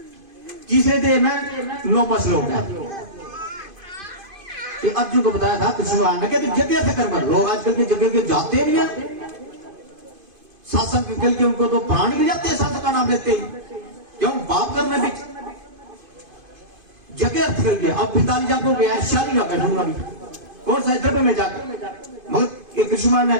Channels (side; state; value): left; late; 2.5 ms